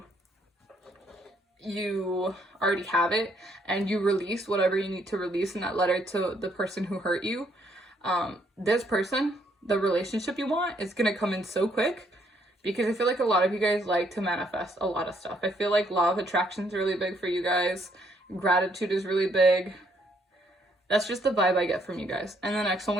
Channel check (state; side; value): normal; both; correlation 0.70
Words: already have it, and you release whatever you need to release in that letter to the person who hurt you. This person, the relationship you want, is going to come in so quick. Because I feel like a lot of you guys like to manifest a lot of stuff. I feel like law of attraction is really big for you guys. Gratitude is really big. That's just the vibe I get from you guys. And the next one